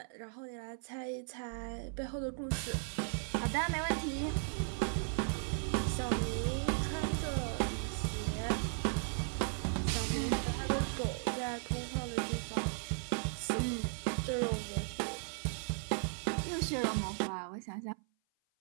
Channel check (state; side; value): silent; left; 53 dB below the other